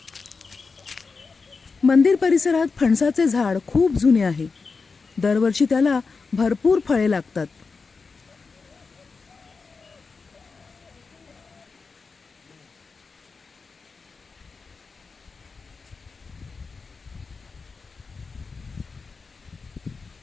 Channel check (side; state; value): right; quieter; 4.6 dB